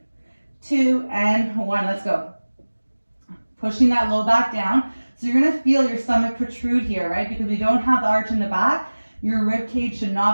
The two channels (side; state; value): both; inverted; correlation -1.00